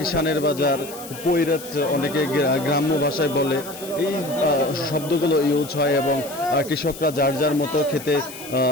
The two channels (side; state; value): left; noise; hiss, 15 dB below the sound